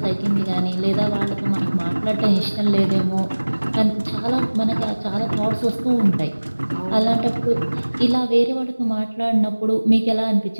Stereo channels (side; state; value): both; inverted; correlation -1.00